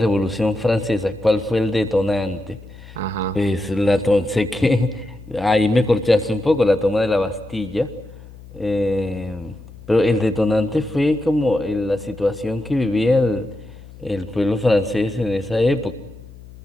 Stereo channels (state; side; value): noise; left; hum, 19 dB below the sound